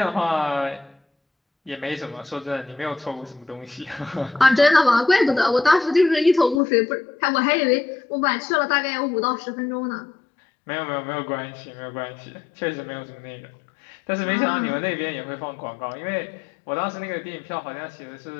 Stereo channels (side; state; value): right; drops out; at 6.6 s